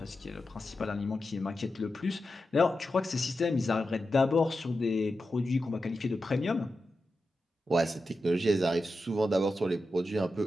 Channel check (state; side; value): normal; both; correlation 0.90